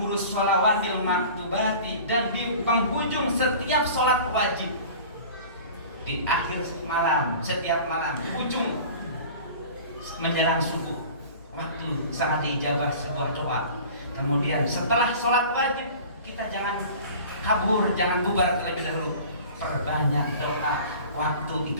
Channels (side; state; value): both; inverted; correlation -0.41